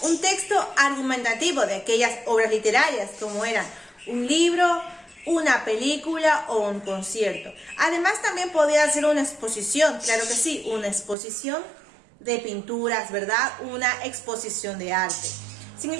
un texto argumentativo de aquellas obras literarias como eran un libro, una película o un concierto. Además, también podía ser una exposición, claro que sí, una exposición de pinturas, ¿verdad? Una exposición de arte. Si en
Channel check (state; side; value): drops out; left; at 11.2 s